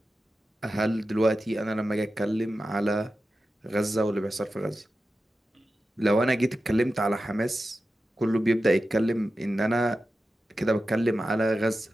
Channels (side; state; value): both; normal; correlation 0.93